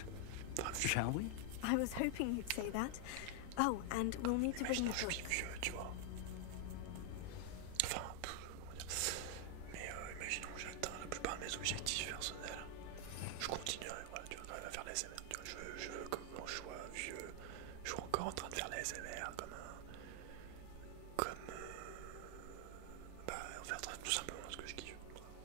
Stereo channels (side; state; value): both; different; correlation 0.00